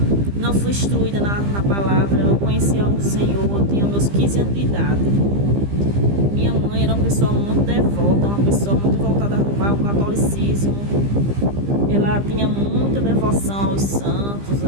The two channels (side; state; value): left; late; 15 ms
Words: não fui instruída na palavra, eu conhecia o Senhor, eu tinha meus 15 anos de idade. Minha mãe era uma pessoa muito devota, uma pessoa muito voltada para o catolicismo, ela tinha muita devoção aos santos,